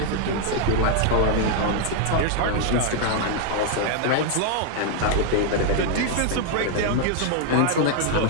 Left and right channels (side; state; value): both; different; correlation 0.00